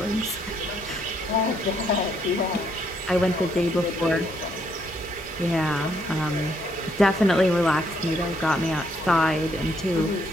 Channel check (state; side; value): normal; both; correlation 0.72